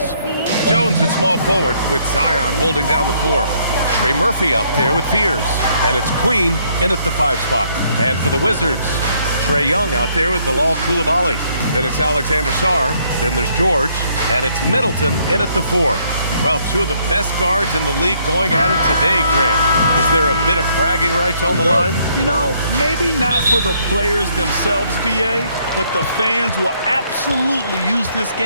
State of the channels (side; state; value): both; inverted; correlation -0.68